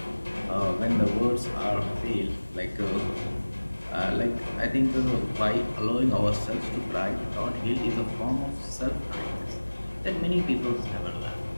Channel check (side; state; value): both; inverted; correlation -1.00